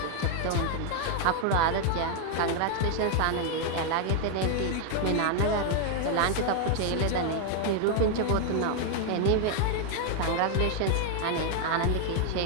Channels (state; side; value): different; both; correlation 0.00